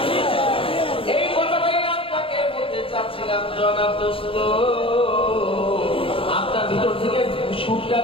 এই কথাটাই আপনাকে বলতে চাচ্ছিলাম জনাব দোস্ত। আপনার ভিতর থেকে সুরটা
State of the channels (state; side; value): late; right; 0.26 ms